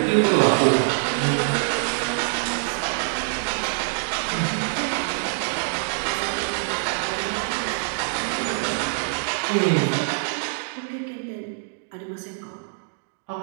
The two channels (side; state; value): left; silent; digital silence